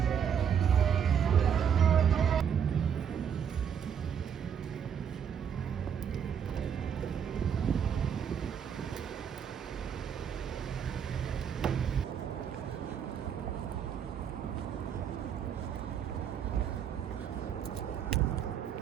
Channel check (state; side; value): quieter; left; 8.0 dB